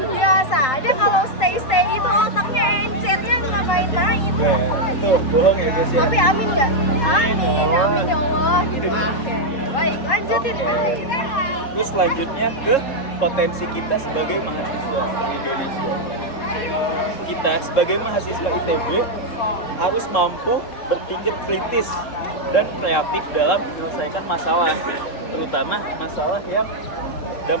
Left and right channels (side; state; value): right; late; 3.7 ms